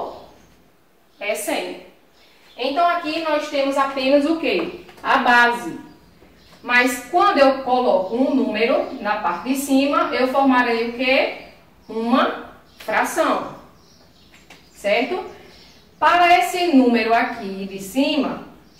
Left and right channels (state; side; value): identical; both; correlation 1.00